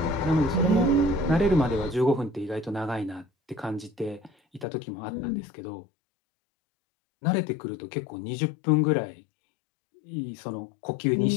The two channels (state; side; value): drops out; right; at 4.7 s